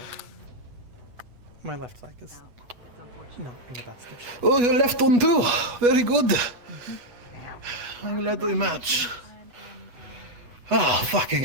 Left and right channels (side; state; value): left; late; 8.2 ms